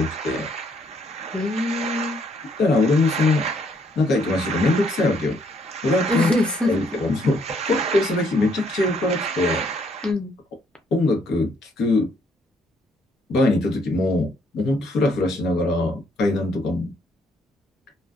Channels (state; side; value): normal; both; correlation 0.69